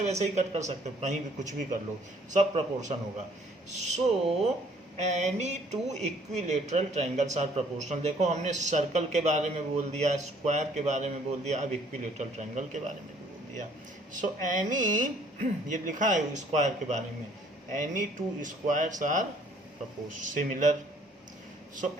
वैसे ही कट कर सकते हो, कहीं भी कुछ भी कर लो, सब प्रपोर्शन होगा। So any two equilateral triangles are proportional. देखो, हमने सर्कल के बारे में बोल दिया, स्क्वायर के बारे में बोल दिया, अब इक्विलेटरल ट्रायंगल के बारे में भी बोल दिया। सो एनी, ये लिखा है स्क्वायर के बारे में, any two squares are similar. So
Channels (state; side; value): normal; both; correlation 0.60